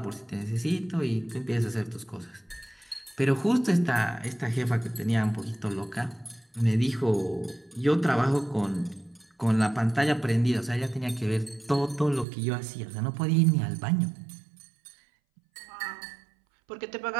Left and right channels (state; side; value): drops out; left; at 12.2 s